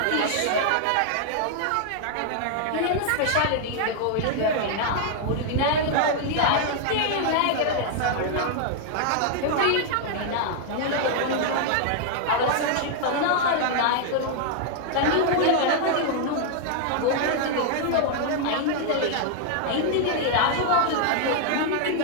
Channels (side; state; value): both; different; correlation 0.00